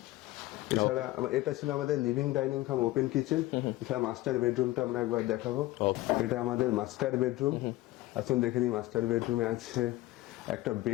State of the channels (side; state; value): right; quieter; 17.7 dB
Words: এছাড়া এটা ছিল আমাদের লিভিং ডাইনিং কাম ওপেন কিচেন। এছাড়া মাস্টার বেডরুমটা আমরা একবার দেখাবো। এটা আমাদের মাস্টার বেডরুম। আসুন দেখে নিই মাস্টার বেডরুমে আছে একটা